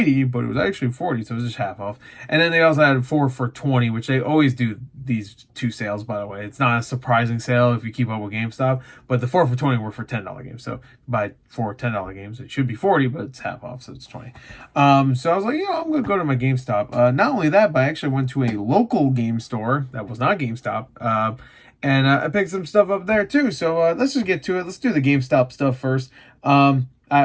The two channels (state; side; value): identical; both; correlation 1.00